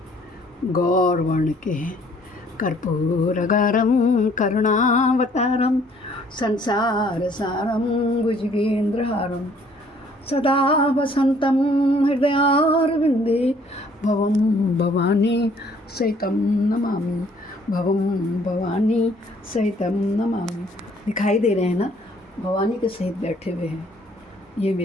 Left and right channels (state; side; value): normal; both; correlation 0.61